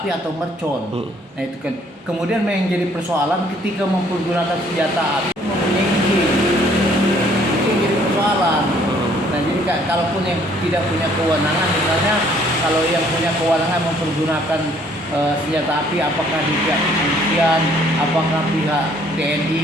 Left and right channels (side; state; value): both; normal; correlation 0.62